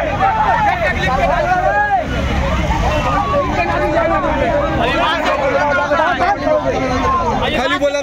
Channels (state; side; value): identical; both; correlation 1.00